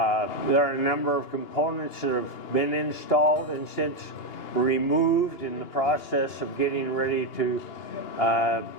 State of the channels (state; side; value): late; right; 2.8 ms